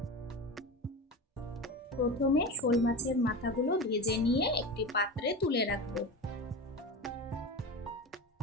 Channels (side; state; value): both; normal; correlation 0.27